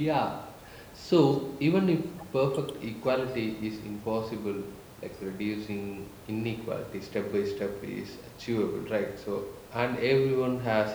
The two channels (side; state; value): both; identical; correlation 1.00